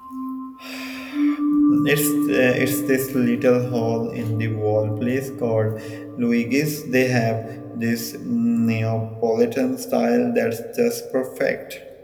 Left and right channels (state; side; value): identical; both; correlation 1.00